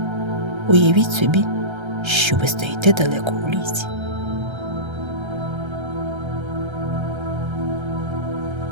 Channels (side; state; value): left; late; 1.3 ms